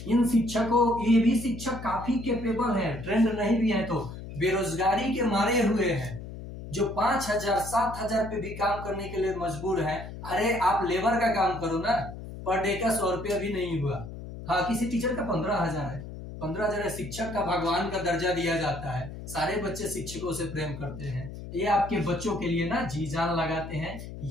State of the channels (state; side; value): noise; left; hum, 11 dB below the sound